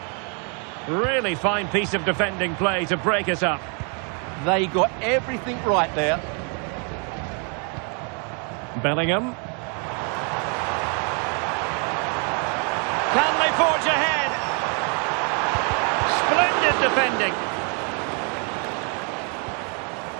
Really fine piece of defending play to break us up. They got everything right there. Bellingham. Can they forge ahead? Splendid defending.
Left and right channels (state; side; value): quieter; left; 37.7 dB